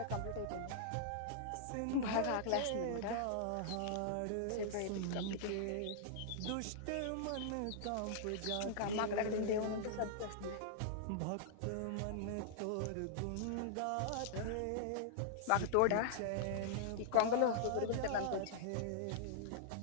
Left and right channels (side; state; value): both; different; correlation -0.01